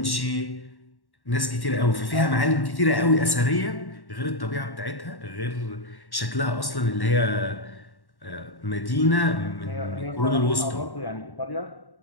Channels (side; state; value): right; late; 1.1 ms